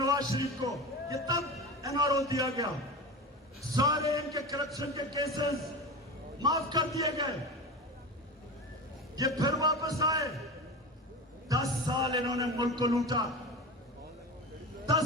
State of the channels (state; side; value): normal; both; correlation 0.27